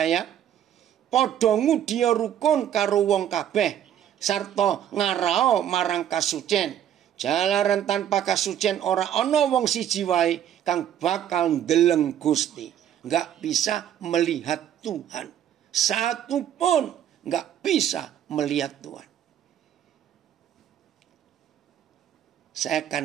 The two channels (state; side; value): quieter; left; 10.3 dB